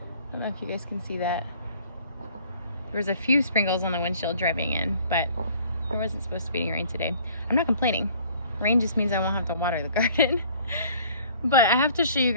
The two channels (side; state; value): both; inverted; correlation -0.54